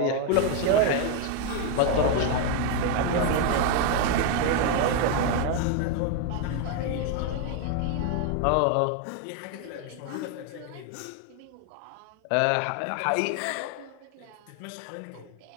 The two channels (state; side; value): different; both; correlation 0.01